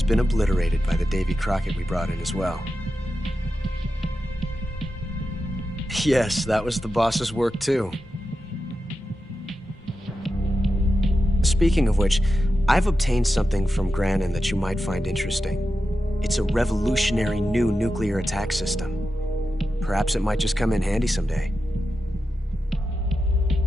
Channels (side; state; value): both; normal; correlation 0.90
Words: been obliterated by the Davy Crockett we brought in as well. Yes, that was the boss's work too. Speaking of which, I've obtained something from Granin that you might find interesting. It's a revolutionary new nuclear attack system. Perhaps it might just come in handy someday.